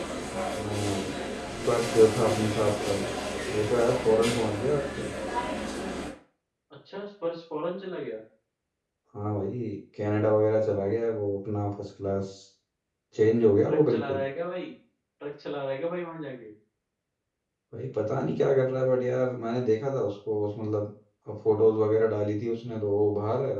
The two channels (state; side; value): identical; both; correlation 1.00